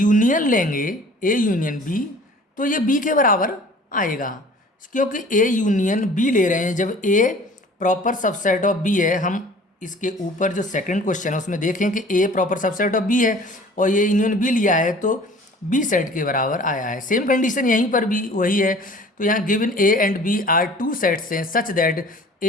लेंगे ए यूनियन बी, तो ये बी के बराबर आएगा, क्योंकि ए यूनियन बी ले रहे हैं। जब ए प्रॉपर सबसेट ऑफ बी है, हम इसके ऊपर जो सेकंड क्वेश्चन है उसमें देखें कि ए प्रॉपर सबसेट ऑफ बी है और ये यूनियन बी लिया है, तो बी सेट के बराबर आया है। सेम कंडीशन यहीं पर भी वही है। तो यहाँ given A and B are two sets हैं such that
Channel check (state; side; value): normal; both; correlation 0.48